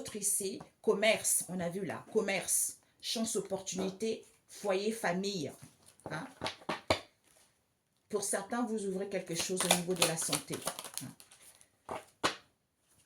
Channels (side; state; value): both; identical; correlation 1.00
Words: ici, commerce, on a vu là, commerce, chance, opportunité, foyer, famille. Hein? Pour certains, vous ouvrez quelque chose au niveau de la santé.